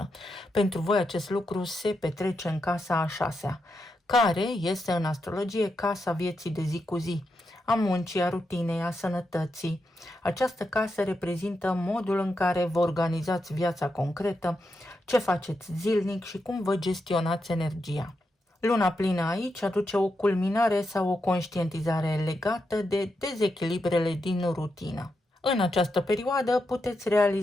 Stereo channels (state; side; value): normal; both; correlation 0.85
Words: Pentru voi acest lucru se petrece în casa a 6-a, care este în astrologie casa vieții de zi cu zi, a muncii, a rutinei, a sănătății. Această casă reprezintă modul în care vă organizați viața concretă, ce faceți zilnic și cum vă gestionați energia. Luna plină aici aduce o culminare sau o conștientizare legată de dezechilibrele din rutină. În această perioadă puteți